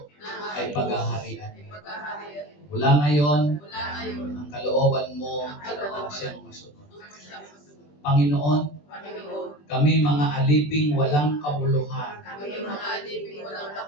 ay paghaharian. Mula ngayon, ang kalooban mo ang siyang masunod. Panginoon, kami mga aliping walang kabuluhan,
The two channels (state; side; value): late; right; 20 ms